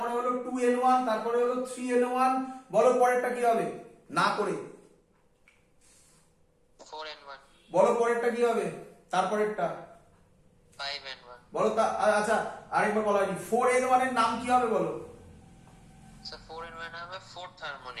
হলো 2n1, তারপরে হলো 3n1। বলো পরেরটা কি হবে? না করে 4n1। বলো পরেরটা কি হবে? তারপরেরটা 5n1। বলো। আচ্ছা আরেকবার বলা হয়নি, 4n1 এর নাম কি হবে বলো? স্যার 4n1 হবে ফোর্থ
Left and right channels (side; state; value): both; identical; correlation 1.00